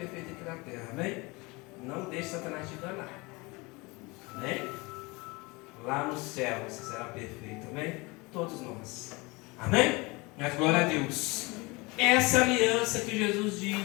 aqui na terra. Amém? Não deixe Satanás te enganar. Amém? Lá no céu você será perfeito. Amém? Todos nós. Amém? Mas glória a Deus. Essa aliança que Jesus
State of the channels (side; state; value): right; quieter; 25.2 dB